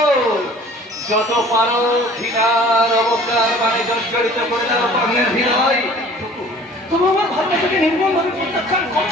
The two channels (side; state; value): both; normal; correlation 0.49